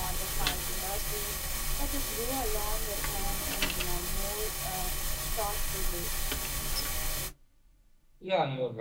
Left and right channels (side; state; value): both; identical; correlation 1.00